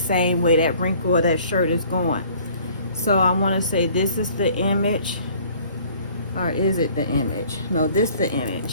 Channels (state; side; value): inverted; both; correlation -0.54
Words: way that wrinkle of that shirt is going. So I want to say this is the image, or is it the image? No, this is the